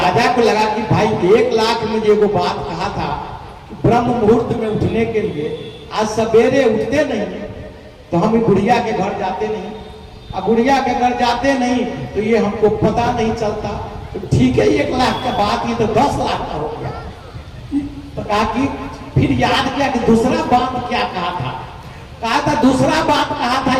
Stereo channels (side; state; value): both; identical; correlation 1.00